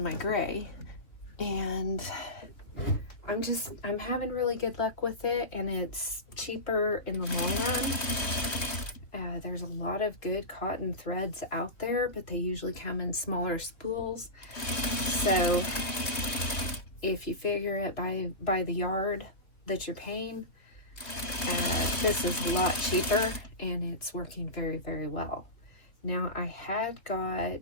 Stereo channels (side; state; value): right; late; 2.9 ms